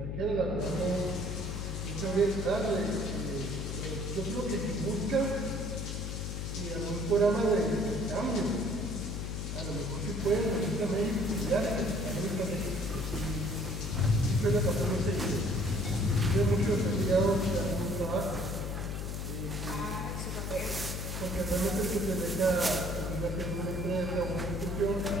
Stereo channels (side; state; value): left; noise; hum, 4 dB below the sound